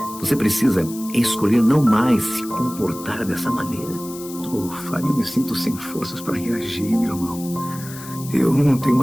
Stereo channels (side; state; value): left; noise; hiss, 15 dB below the sound